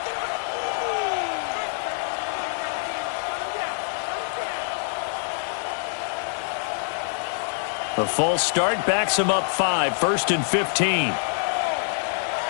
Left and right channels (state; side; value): silent; right; 61 dB below the other